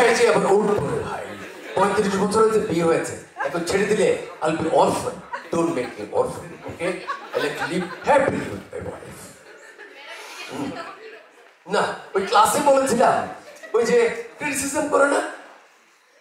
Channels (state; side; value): identical; both; correlation 1.00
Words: যে আবার উঠবো ভাই, 35 বছর হয়েছে বিয়ে হয়েছে, এখন ছেড়ে দিলে I'll be orphan. Don't make me orphan, okay? I like to live happily with my wife. না ওই ক্লাসে বলেছিলাম ওই যে ক্রিটিসিজম করে না,